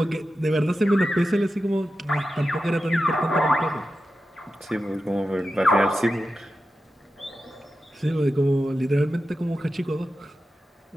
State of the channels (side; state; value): both; normal; correlation 0.92